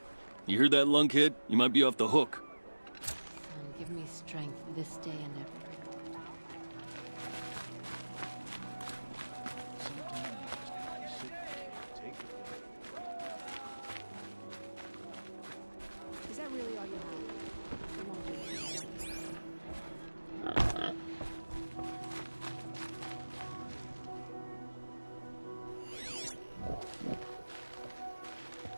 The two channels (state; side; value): inverted; both; correlation -1.00